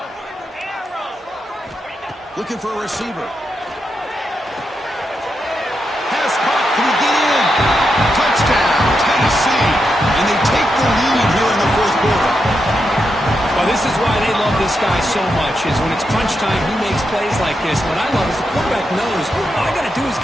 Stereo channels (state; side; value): normal; both; correlation 0.85